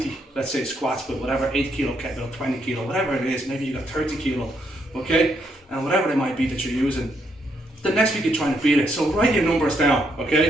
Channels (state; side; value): normal; both; correlation 0.76